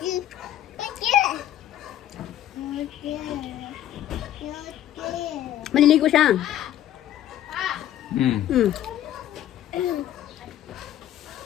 Maliligo siya. Hmm. Hmm.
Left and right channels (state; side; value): quieter; right; 12.0 dB